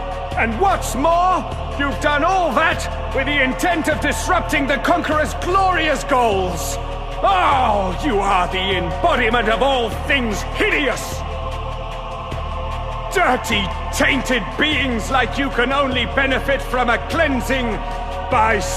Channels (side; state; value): both; identical; correlation 1.00